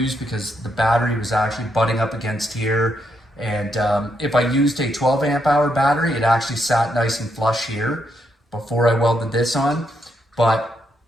because the battery was actually butting up against here. And if I used a 12 amp hour battery, it actually sat nice and flush here before I welded this on. But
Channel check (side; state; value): both; normal; correlation 0.79